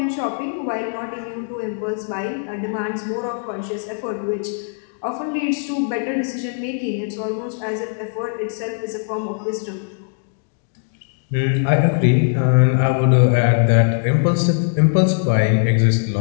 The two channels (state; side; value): silent; right; digital silence